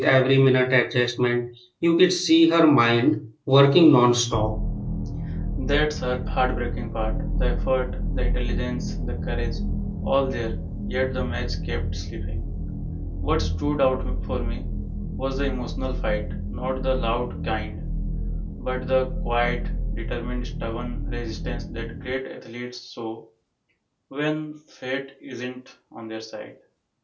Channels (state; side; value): identical; both; correlation 1.00